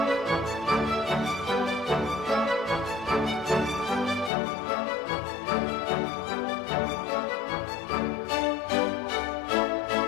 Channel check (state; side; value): drops out; right; at 4.3 s